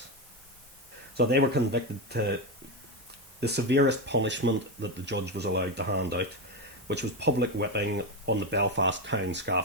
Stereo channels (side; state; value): both; normal; correlation 0.12